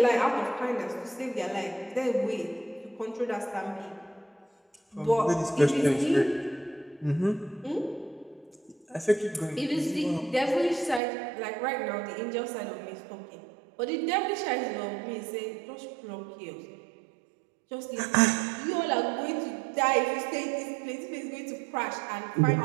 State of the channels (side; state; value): left; drops out; at 11.0 s